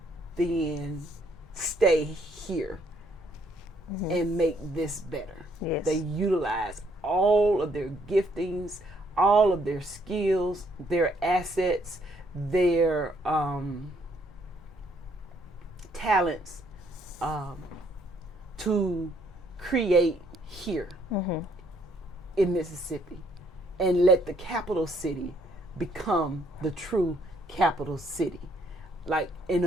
then stay here and make this better. Yes. They utilize all of their giftings, all of their skills, their assets, their talents to create here in Mississippi, and let the capital city become the true capital city. Like, in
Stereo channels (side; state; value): both; normal; correlation 0.68